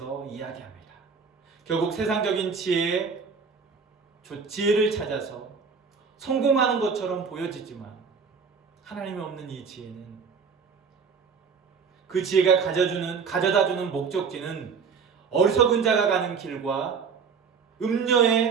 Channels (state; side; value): quieter; left; 5.8 dB